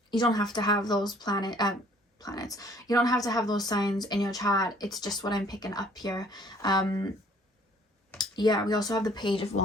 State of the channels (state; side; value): normal; both; correlation 0.58